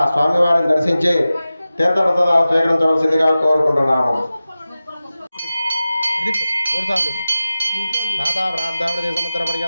స్వామివారిని దర్శించి తీర్థప్రసాదాలు స్వీకరించవలసిందిగా కోరుకుంటున్నాము. దాతా ప్రార్థావృతి సముద్ర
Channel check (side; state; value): both; inverted; correlation -0.95